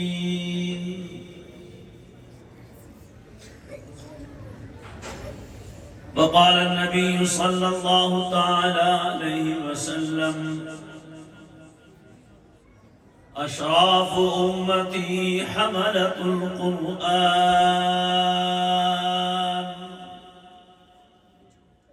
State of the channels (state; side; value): identical; both; correlation 1.00